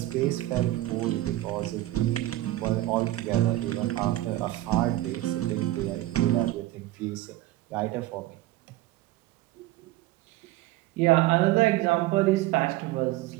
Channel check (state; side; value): quieter; left; 16.3 dB